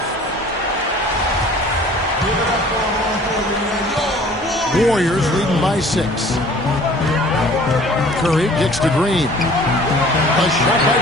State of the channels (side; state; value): both; normal; correlation 0.50